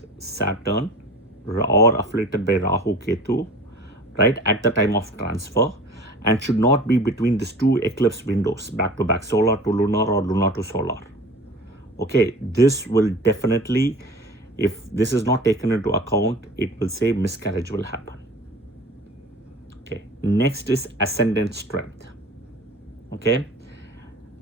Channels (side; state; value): both; normal; correlation 0.41